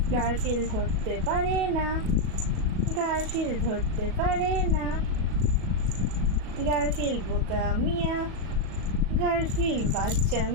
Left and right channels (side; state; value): left; late; 37 ms